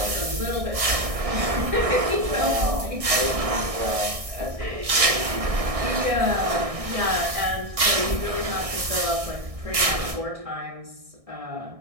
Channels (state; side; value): late; left; 1.6 ms